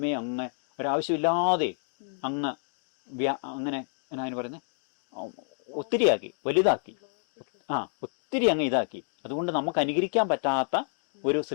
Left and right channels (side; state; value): right; silent; 59 dB below the other